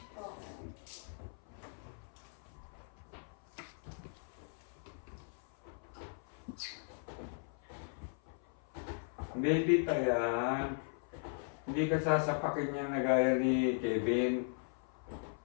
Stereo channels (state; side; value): silent; right; 52 dB below the other